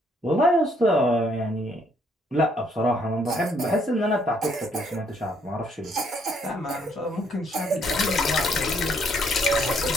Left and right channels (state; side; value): normal; both; correlation 0.68